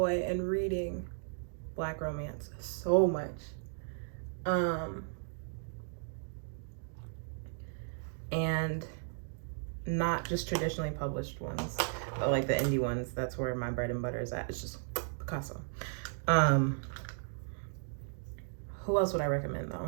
in reading Black romance. So much. And not just traditionally published ones, but like the indie ones. That's where my bread and butter is at. It's just Picasso. Who else would I recommend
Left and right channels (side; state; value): left; silent; digital silence